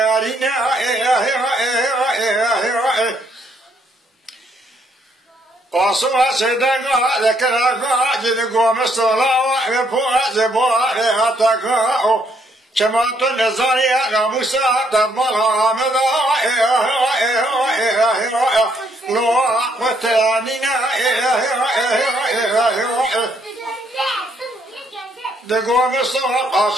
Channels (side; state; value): both; normal; correlation 0.70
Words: قصوا سدنا ذكرنا جدك مستلا وفوز بواليتك شمعت النزاريا غموسى دمالها مضى لو أقوتانينا دقوا مصطفى